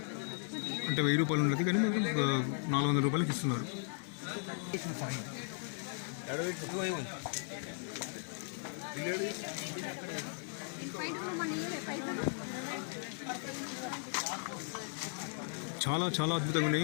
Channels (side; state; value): right; silent; 53 dB below the other